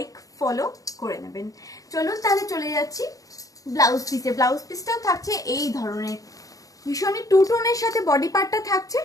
ফলো করে নেবেন। চলুন তাহলে চলে যাচ্ছি ব্লাউজ পিসে। ব্লাউজ পিসটাও থাকছে এই ধরনের ভীষণই টু টোনের সাথে বডি পার্টটা থাকছে,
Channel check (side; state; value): right; late; 0.17 ms